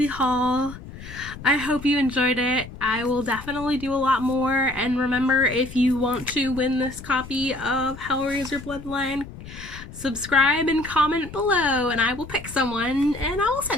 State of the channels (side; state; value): left; noise; rumble, 14 dB below the sound